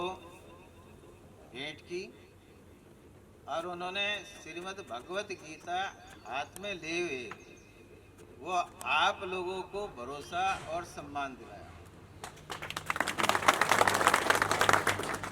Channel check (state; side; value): identical; both; correlation 1.00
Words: भेंट की और उन्होंने श्रीमद् भगवत गीता हाथ में ले हुए वो आप लोगों को भरोसा और सम्मान दिलाया।